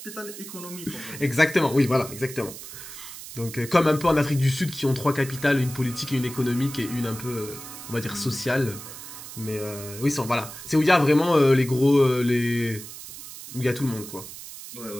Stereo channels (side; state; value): right; noise; hiss, 13 dB below the sound